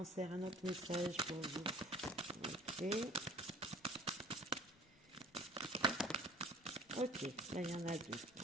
un autre message pour vous. Ok. Ok, là il y en a deux.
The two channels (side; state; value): both; normal; correlation 0.47